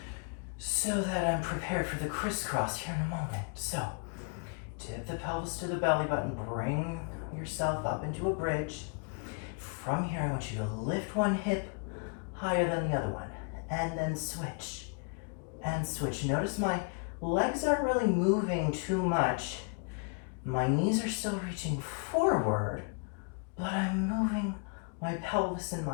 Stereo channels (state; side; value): quieter; right; 37.1 dB